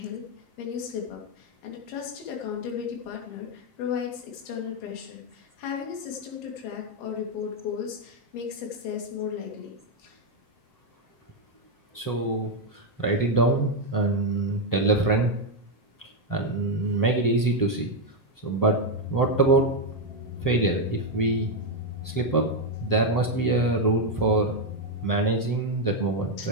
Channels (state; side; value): late; right; 7.6 ms